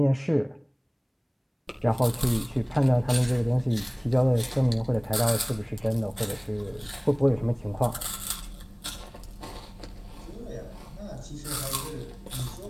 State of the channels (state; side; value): identical; both; correlation 1.00